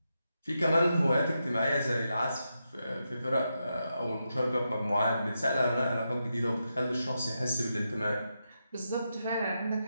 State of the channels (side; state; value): both; inverted; correlation -0.86